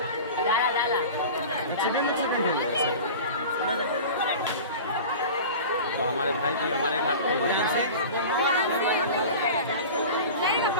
तो हमारे भाई भी हमारे घाट पे बहुत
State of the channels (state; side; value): inverted; both; correlation -0.35